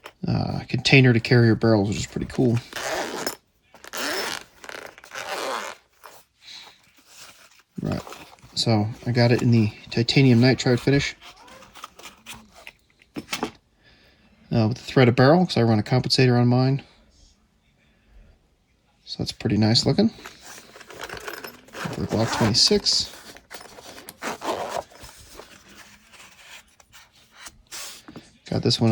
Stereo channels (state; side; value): identical; both; correlation 1.00